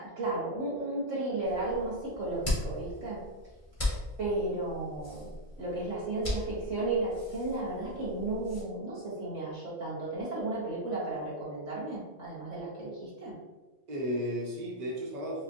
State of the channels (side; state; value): both; normal; correlation 0.00